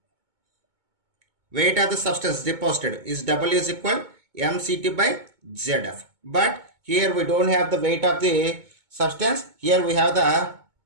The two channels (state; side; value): late; left; 2.2 ms